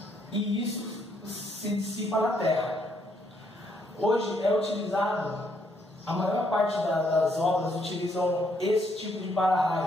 e isso se dissipa na terra. Hoje é utilizado, a maior parte das obras utilizam esse tipo de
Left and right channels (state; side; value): normal; both; correlation 0.72